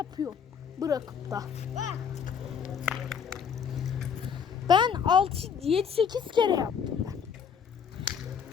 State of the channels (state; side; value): quieter; right; 7.1 dB